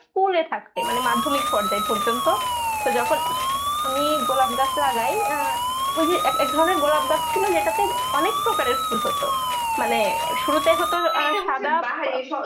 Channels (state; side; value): identical; both; correlation 1.00